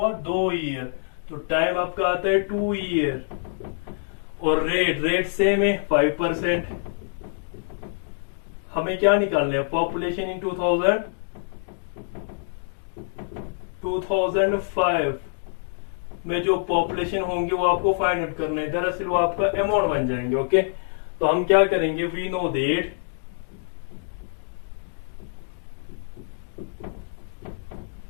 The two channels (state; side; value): silent; right; digital silence